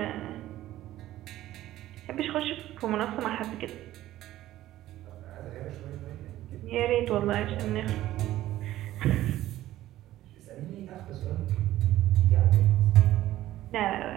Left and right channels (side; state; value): left; quieter; 14.5 dB